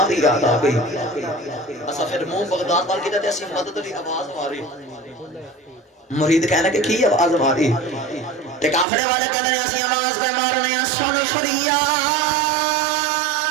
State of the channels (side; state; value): left; drops out; at 8.8 s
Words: دی یاد آ گئی اسا پھر منہ بغداد وال کیتا تے اسی مدد دی آواز ماری مرید کہنا کہ کی آواز ماری تے قافلے والے کہندے نے اسی آواز پہ مارنے سن شریعہ